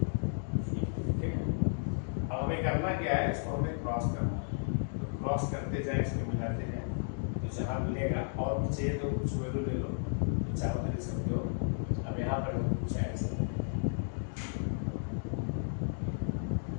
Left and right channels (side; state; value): right; silent; digital silence